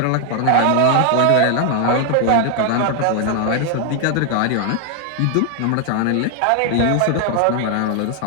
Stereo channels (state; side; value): different; both; correlation 0.00